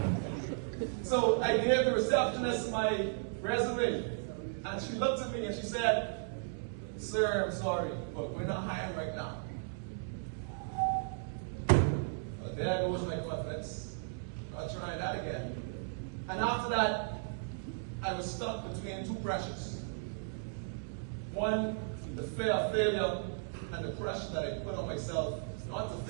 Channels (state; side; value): silent; left; digital silence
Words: So I gave the receptionist my resume, and she looked at me and she said, sir, I'm sorry, but we're not hiring right now. Well, there goes my confidence. I'll try that again. And after that, I was stuck between two pressures. One, the fear of failure and the pressure that I put on myself not to